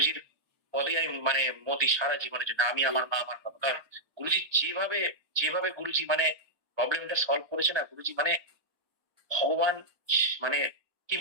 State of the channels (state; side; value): late; left; 1.3 ms